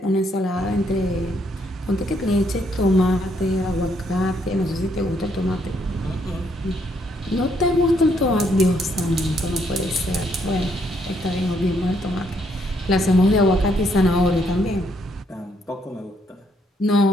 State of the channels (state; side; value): normal; both; correlation 0.72